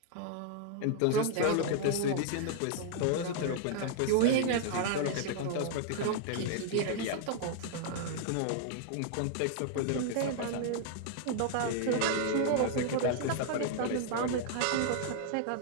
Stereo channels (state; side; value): different; both; correlation 0.00